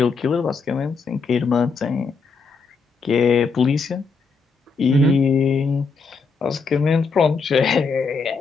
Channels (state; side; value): quieter; right; 4.7 dB